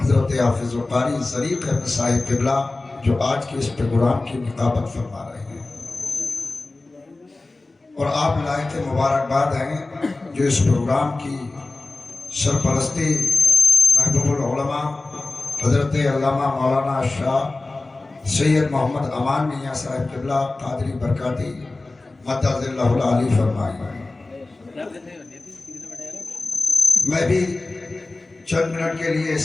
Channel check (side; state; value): right; quieter; 3.2 dB